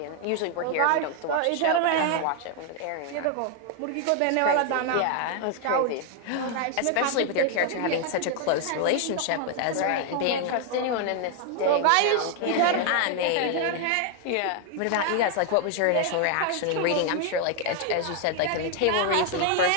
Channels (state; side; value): different; both; correlation 0.00